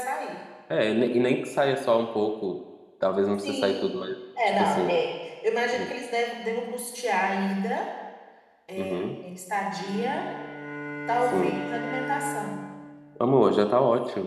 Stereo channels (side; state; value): both; identical; correlation 1.00